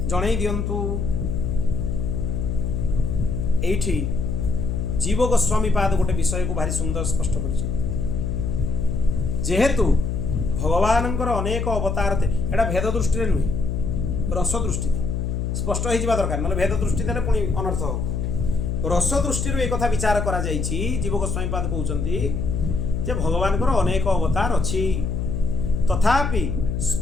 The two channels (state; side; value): noise; left; hum, 1 dB below the sound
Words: जणई दियंतु एठी जीव गोस्वामी पाद गोटे विषय को भारी सुंदर स्पष्ट कर जेहेतु भगवानंकर अनेक अवतार थे एटा भेद दृष्टि नुहे रस दृष्टि स्पष्ट हो जावा दरकार ना भेद दृष्टि देले पुणी अनर्थ हो रस दृष्टि एक कथा विचार करा जाइछि जीव गोस्वामी पाद कहउचंती जे भगवानकर अनेक अवतार अछि तथापि